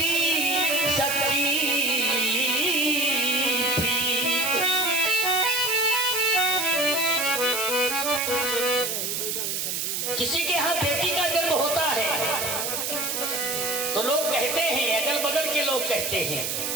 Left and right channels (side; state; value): right; noise; hiss, 1 dB below the sound